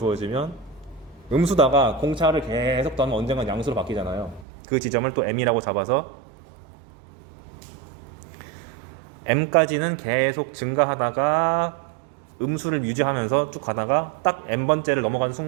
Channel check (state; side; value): drops out; left; at 4.5 s